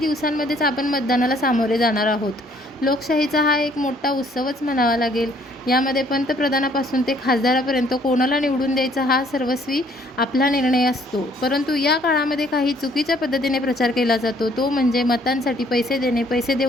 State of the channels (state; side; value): normal; both; correlation 0.62